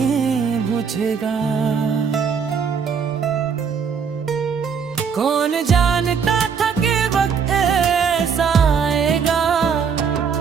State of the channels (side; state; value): left; quieter; 6.4 dB